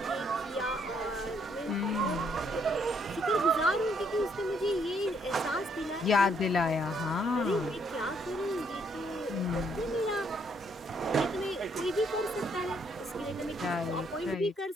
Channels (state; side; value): normal; both; correlation 0.70